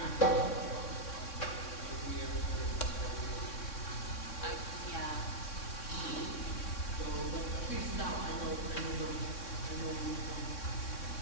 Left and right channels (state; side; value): late; right; 3.6 ms